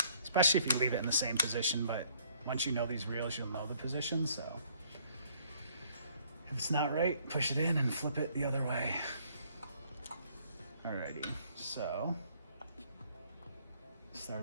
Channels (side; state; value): both; inverted; correlation -0.63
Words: especially if you leave it in the same position, but once you know these reels, you'll know the position, so if it's not right, push it in and flip it the other way. Alrighty, so